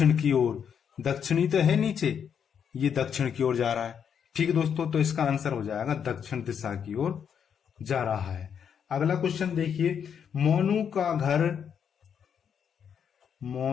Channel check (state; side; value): quieter; right; 7.7 dB